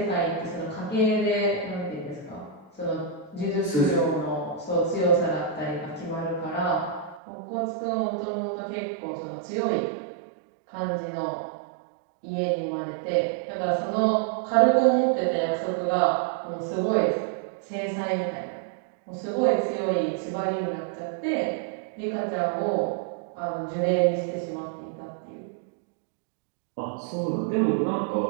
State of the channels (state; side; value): drops out; left; at 7.2 s